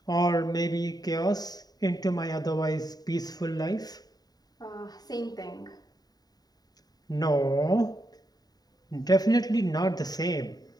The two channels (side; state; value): right; late; 0.19 ms